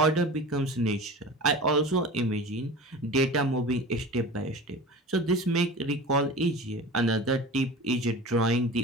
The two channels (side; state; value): both; normal; correlation 0.35